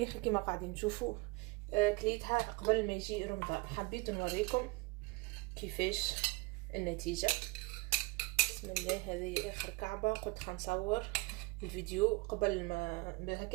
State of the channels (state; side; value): quieter; left; 25.1 dB